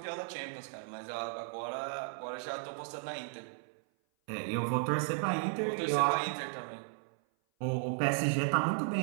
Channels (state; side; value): silent; left; 54 dB below the other